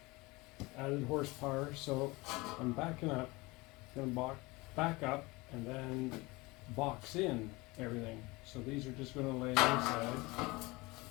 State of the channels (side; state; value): right; quieter; 23.3 dB